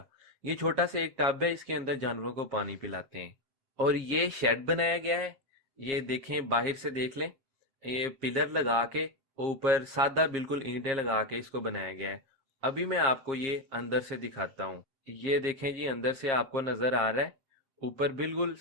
ये छोटा सा एक टब है, इसके अंदर जानवरों को पानी पिलाते हैं। और ये शेड बनाया गया है, ये देखें, बाहर से देख लें। ये पिलर लगा के ऊपर सादा बिल्कुल ईंटें लगा के इसको बनाया गया है। अभी मैं आपको ये अंदर से दिखाता हूँ। ये देखें जी, अंदर से आपको नजर आ रहा है। ऊपर बिल्कुल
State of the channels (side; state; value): left; late; 7.4 ms